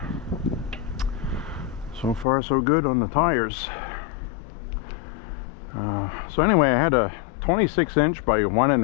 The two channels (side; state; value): right; drops out; at 2.2 s